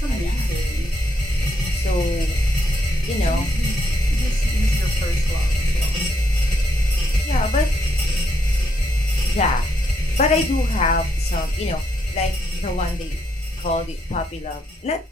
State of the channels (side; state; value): both; normal; correlation 0.76